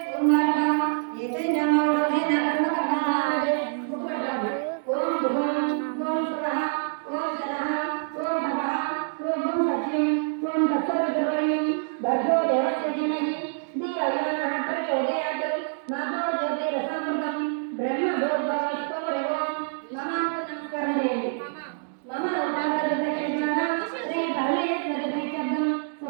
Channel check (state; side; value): silent; left; digital silence